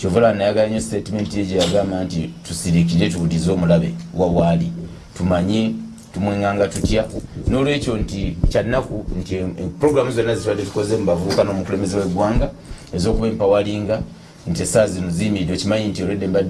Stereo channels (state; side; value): identical; both; correlation 1.00